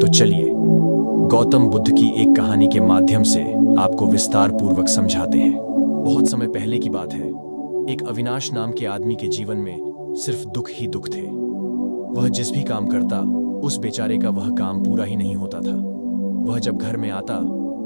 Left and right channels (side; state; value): both; inverted; correlation -1.00